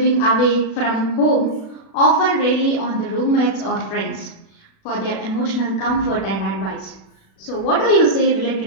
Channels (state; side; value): late; right; 36 ms